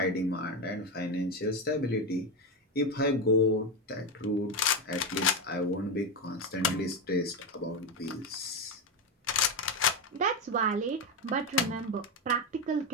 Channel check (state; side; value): normal; both; correlation 0.11